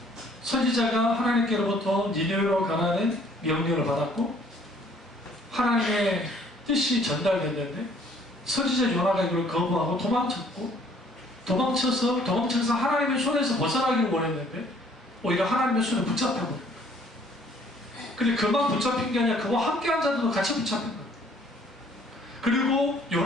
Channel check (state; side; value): normal; both; correlation 0.60